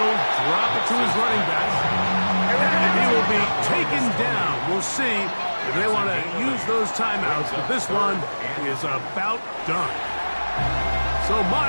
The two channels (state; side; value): inverted; both; correlation -1.00